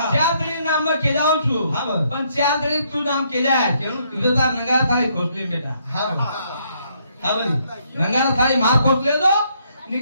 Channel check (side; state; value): both; inverted; correlation -0.71